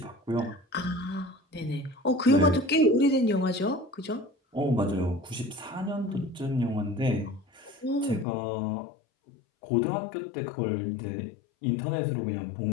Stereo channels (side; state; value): right; drops out; at 8.2 s